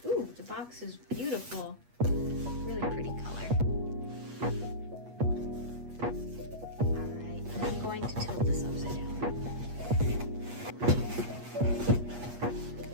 Ooh, the box is beautiful. Really pretty color. Alright, I'm going to tilt this upside down.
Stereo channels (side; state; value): left; late; 8.4 ms